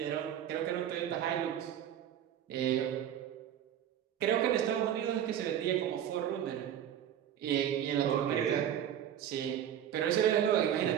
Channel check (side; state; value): left; quieter; 10.2 dB